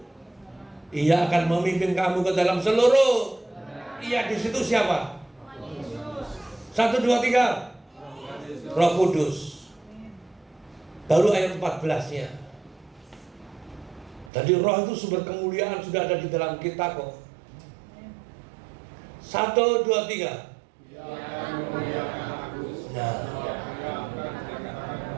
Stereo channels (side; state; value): left; drops out; at 14.3 s